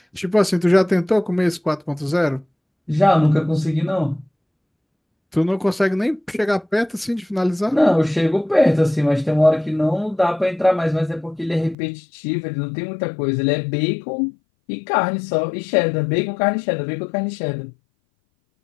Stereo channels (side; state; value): right; drops out; at 11.8 s